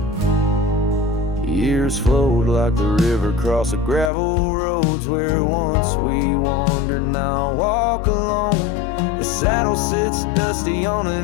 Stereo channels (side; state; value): right; drops out; at 4.1 s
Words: Years flowed like the river across the gravel roads where once we wandered. Now I walk alone. The saddle sits dusty on